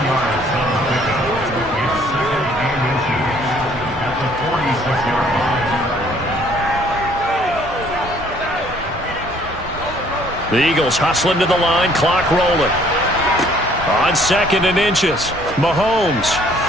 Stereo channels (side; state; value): both; normal; correlation 0.60